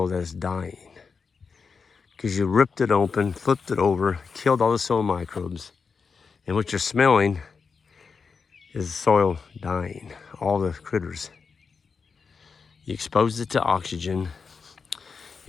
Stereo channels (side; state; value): right; quieter; 5.3 dB